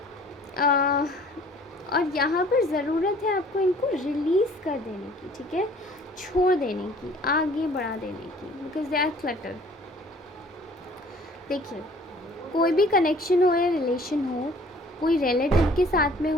और यहाँ पर ज़रूरत है आपको इनको रिलीज़ कर देने की, ठीक है, छोड़ देने की, आगे बढ़ा देने की, बिकॉज दे आर क्लटर। देखिए, कोई भी कनेक्शन हो या रिलेशन हो, कोई रिलेटिव के साथ में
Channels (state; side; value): normal; both; correlation 0.53